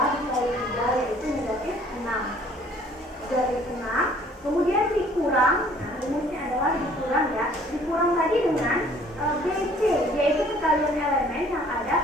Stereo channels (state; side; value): normal; both; correlation 0.56